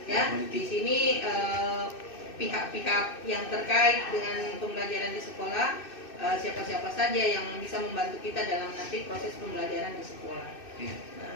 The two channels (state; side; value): late; right; 2.6 ms